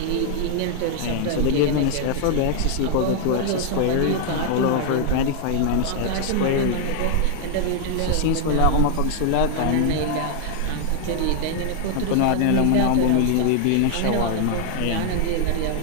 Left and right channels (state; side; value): different; both; correlation 0.00